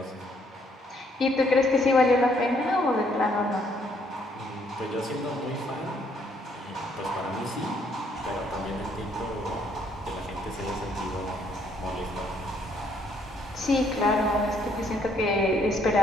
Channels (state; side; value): normal; both; correlation 0.68